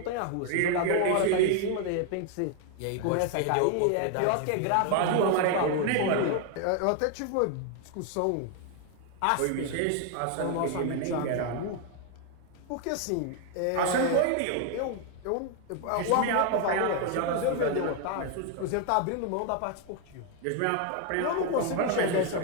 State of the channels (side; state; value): both; different; correlation 0.00